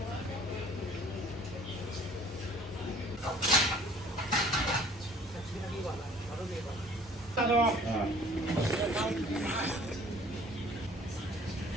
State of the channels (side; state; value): both; normal; correlation 0.53